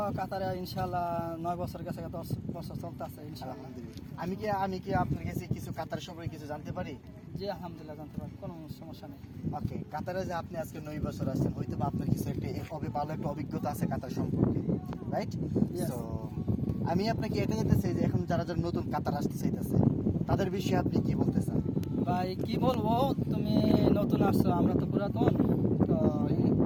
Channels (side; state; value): both; identical; correlation 1.00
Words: কাতারে ইনশাআল্লাহ 9 বছর গেছে, 10 বছর চলতেছে ইনশাআল্লাহ। আলহামদুলিল্লাহ। আমি কি আপনার কাছে কিছু কাতার সম্পর্কে কিছু জানতে পারি? জি আলহামদুলিল্লাহ জানতে পারি, কোনো সমস্যা নেই। ওকে, কাতারে যে আপনি আজকে 9 বছর আসছেন, হয়তো বা আপনার কিছু একটা ভালো একটা অভিজ্ঞতা আছে কাতার সম্পর্কে, রাইট? তো আমি আপনাকে এটা জানতে চাই যে এখন যারা যারা নতুন কাতার আসতে চাইতেছে তাদের বিষয়ে আপনি কি বলতে চান? ভাই কি বলবো, তুমি নতুন আসছো, আমরা তো পুরাতন। তো এই